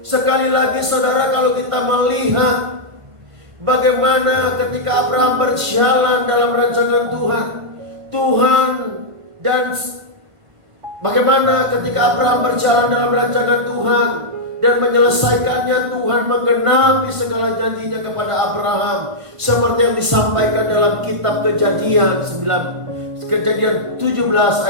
Sekali lagi saudara, kalau kita melihat bagaimana ketika Abraham berjalan dalam rancangan Tuhan, dan bagaimana ketika Abraham berjalan dalam rancangan Tuhan dan menyelesaikannya, Tuhan menggenapi segala janjinya kepada Abraham, seperti yang disampaikan dalam kitab Kejadian 17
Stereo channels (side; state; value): left; late; 1.5 ms